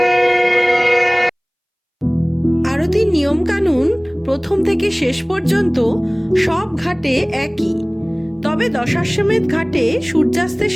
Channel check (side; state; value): both; identical; correlation 1.00